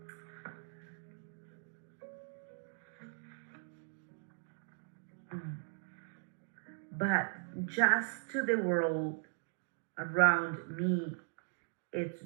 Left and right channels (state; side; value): silent; left; digital silence